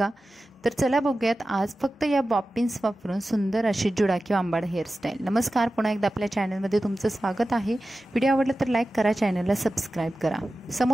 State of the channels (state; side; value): normal; both; correlation 0.94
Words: तर चला बघूयात आज फक्त या बॉबिन्स वापरून सुंदर अशी जुडा किंवा आंबाडा हेअरस्टाईल. नमस्कार, पुन्हा एकदा आपल्या चॅनलमध्ये तुमचं स्वागत आहे. व्हिडिओ आवडला तर लाईक करा, चॅनलला सबस्क्राईब करा.